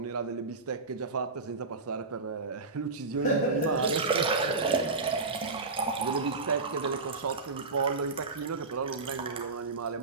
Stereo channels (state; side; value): quieter; left; 3.8 dB